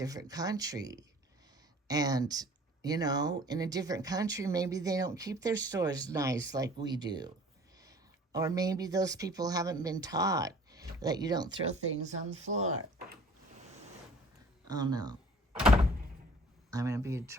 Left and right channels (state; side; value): normal; both; correlation 0.50